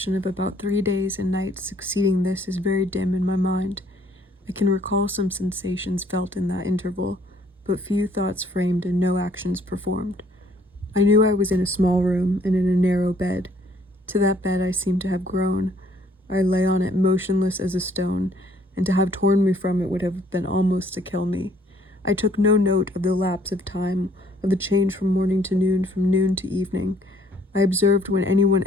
of about 3 days and nights succeeding this is very dim in my mind. I can recall some sensations felt in that interval, but few thoughts framed and no actions performed. I knew I was in a small room and in a narrow bed. To that bed I seemed to have grown. I lay on it motionless as a stone, and to have torn me from it would have been almost to kill me. I took no note of the lapse of time, of the change from morning to noon, from noon to evening. I observed when anyone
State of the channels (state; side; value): normal; both; correlation 0.62